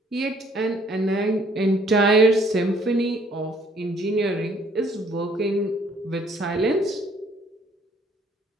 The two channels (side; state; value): both; normal; correlation 0.62